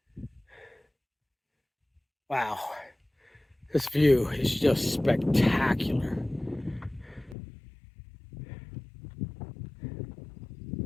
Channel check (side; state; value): right; drops out; at 7.4 s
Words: Wow. This view is just spectacular.